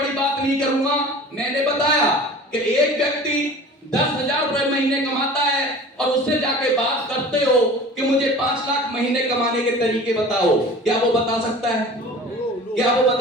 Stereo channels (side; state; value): both; normal; correlation 0.41